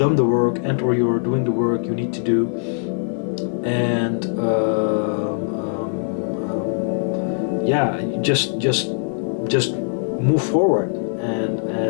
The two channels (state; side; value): silent; right; digital silence